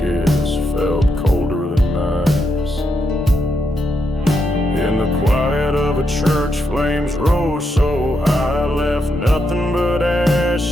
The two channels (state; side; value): normal; both; correlation 0.81